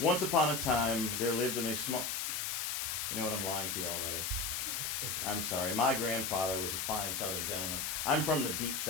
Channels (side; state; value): left; noise; hiss, 1 dB below the sound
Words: upon a time, there lived in a small... You know what? I'm lying to you already. I'm sorry. My grandfather was a fine Southern gentleman. I'm from the deep